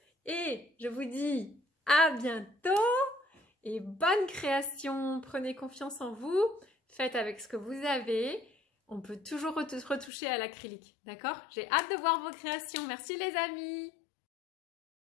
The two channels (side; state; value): right; drops out; at 10.1 s